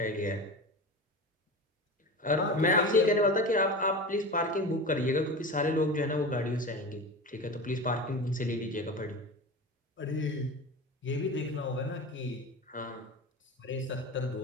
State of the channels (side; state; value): both; normal; correlation 0.29